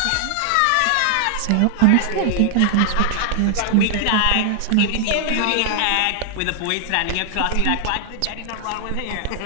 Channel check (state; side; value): different; both; correlation -0.01